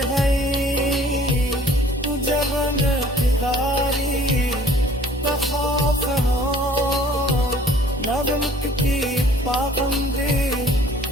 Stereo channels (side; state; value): both; normal; correlation 0.54